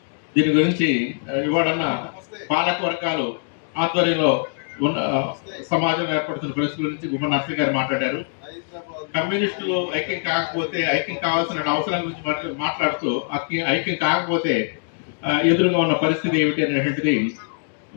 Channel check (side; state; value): right; silent; digital silence